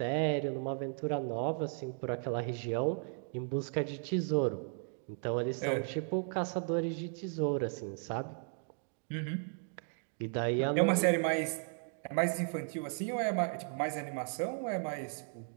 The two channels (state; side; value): silent; left; 54 dB below the other